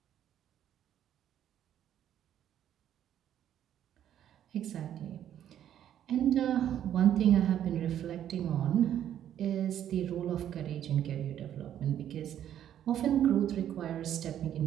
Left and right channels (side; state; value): left; quieter; 10.6 dB